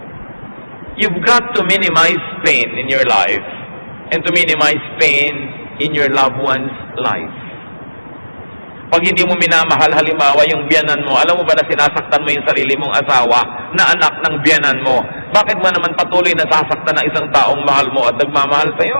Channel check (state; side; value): inverted; both; correlation -1.00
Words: You've got to minimize pain in your life and to minimize pain in your loved one's life. Pag hindi mo minamahal halimbawa yung biyanan mo, alam mo ba na sinasaktan mo yung sarili mong asawa na anak ng biyanan mo? Bakit mo naman patuloy na sasaktan ng isang taong mahal mo at nagmamahal